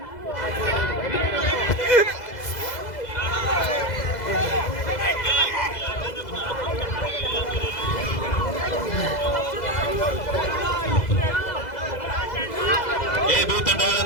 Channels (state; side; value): late; right; 2.0 ms